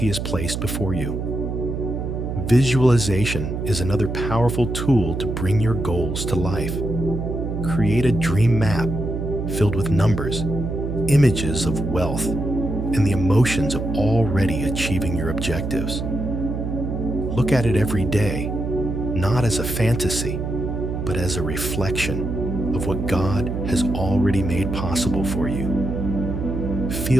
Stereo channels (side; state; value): right; noise; hum, 3 dB below the sound